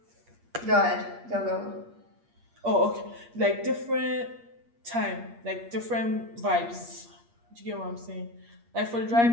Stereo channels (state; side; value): late; left; 8.5 ms